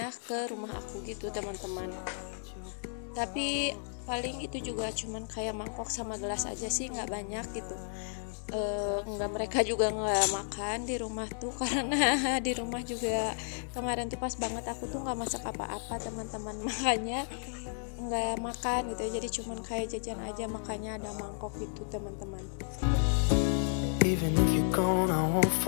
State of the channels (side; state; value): right; silent; 56 dB below the other